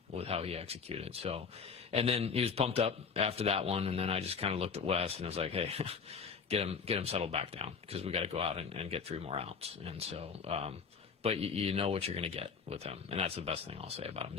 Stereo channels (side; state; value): right; quieter; 5.8 dB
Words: with how he executed. So, and then he was pumped up after that one, and then I just kind of looked at Wes and I was like, hey, get him settled back down because we got to go out and get 3 more outs. And so. But you know what you're going to get with him, and that's the best thing I'll say about him